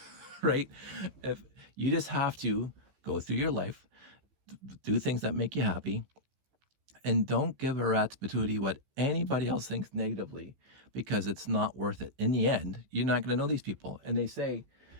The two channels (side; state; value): left; late; 15 ms